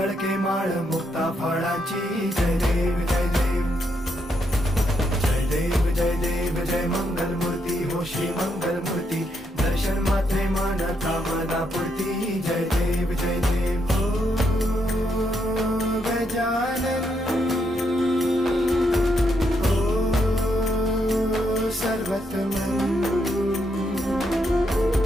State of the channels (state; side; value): normal; both; correlation 0.78